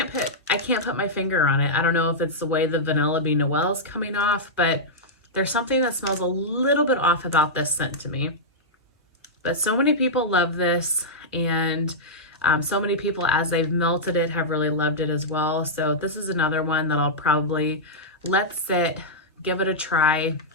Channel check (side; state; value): both; normal; correlation -0.09